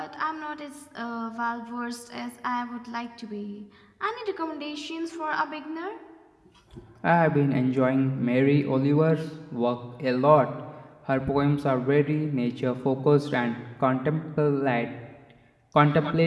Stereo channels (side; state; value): both; identical; correlation 1.00